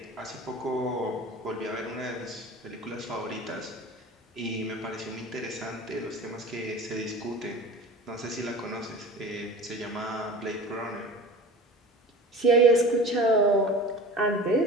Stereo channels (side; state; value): both; normal; correlation 0.37